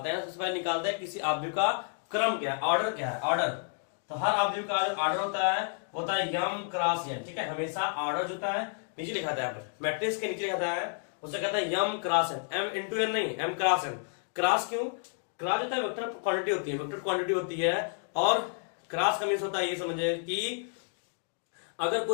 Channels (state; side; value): silent; right; 57 dB below the other